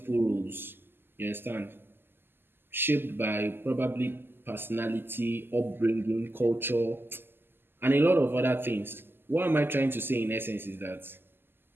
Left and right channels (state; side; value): late; left; 0.10 ms